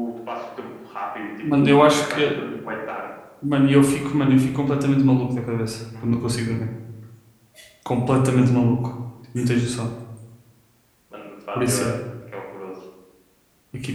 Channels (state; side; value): identical; both; correlation 1.00